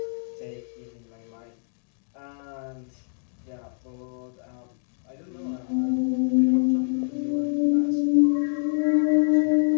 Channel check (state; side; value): silent; right; digital silence